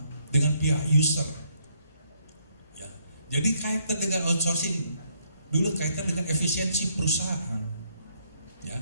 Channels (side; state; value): both; inverted; correlation -0.72